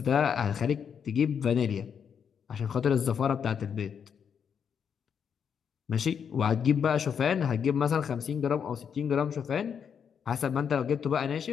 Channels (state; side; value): quieter; right; 7.4 dB